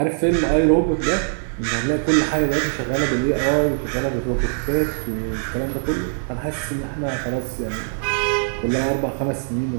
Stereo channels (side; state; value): left; silent; digital silence